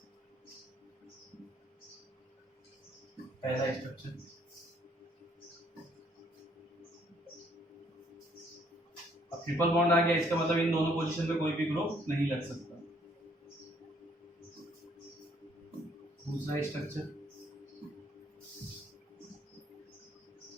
पहला स्ट्रक्चर, अब ट्रिपल बॉन्ड आ गया, इसका मतलब इन दोनों पोजीशन पे कोई भी ग्रुप नहीं लग सकता। दूसरा स्ट्रक्चर,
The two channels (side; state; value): both; normal; correlation 0.65